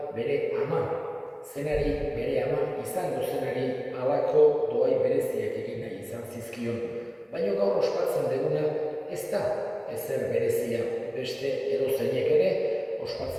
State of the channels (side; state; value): both; identical; correlation 1.00